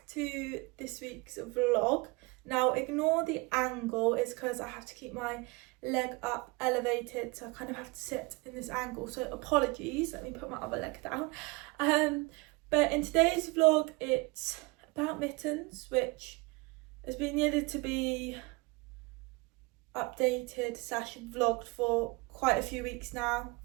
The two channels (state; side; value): quieter; left; 26.3 dB